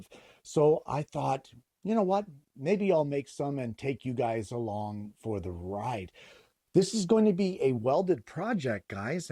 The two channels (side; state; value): both; identical; correlation 1.00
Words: So I thought, you know what? Maybe I'll make some and take you guys along for the ride. This is going to be a welded project, guys.